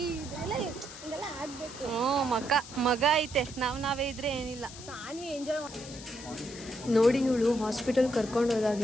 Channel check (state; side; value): noise; left; hiss, 14 dB below the sound